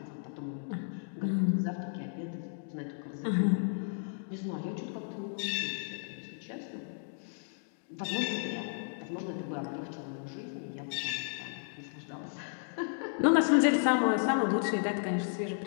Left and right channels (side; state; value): right; silent; digital silence